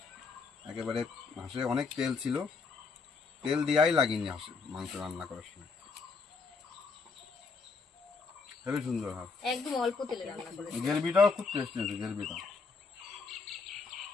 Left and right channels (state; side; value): quieter; right; 4.6 dB